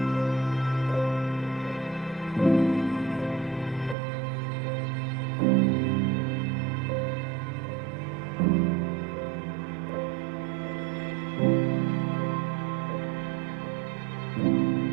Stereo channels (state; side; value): drops out; left; at 4.0 s